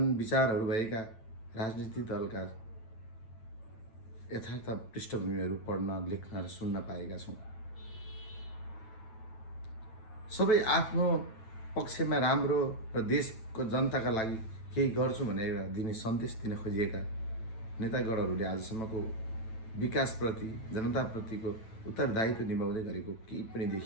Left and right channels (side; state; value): right; late; 9.0 ms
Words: विचारहरू भएका राजनीतिक दलका यथार्थ पृष्ठभूमिहरू पढ्न, लेख्न र सुन्न पाएका छौँ। सबै आफ्नो पक्षमा राम्रो र देशको जनताका लागि केही गर्छु भनेर दिने सन्देश दिन खोजिएका नेतागणहरूले आजसम्मको विकासप्रति, जनताप्रतिको उत्तरदायित्व निभाउँदै गरेको केही पनि